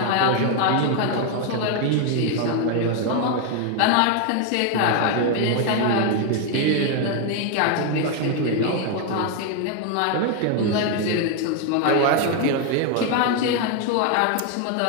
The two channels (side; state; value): both; different; correlation 0.01